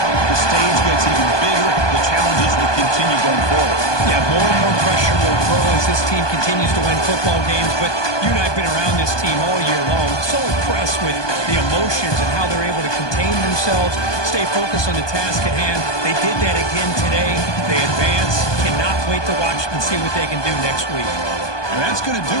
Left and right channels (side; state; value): right; late; 1.2 ms